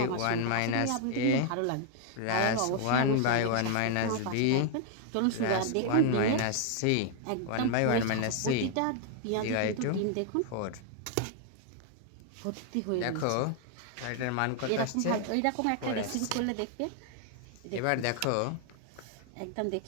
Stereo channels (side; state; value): both; different; correlation 0.00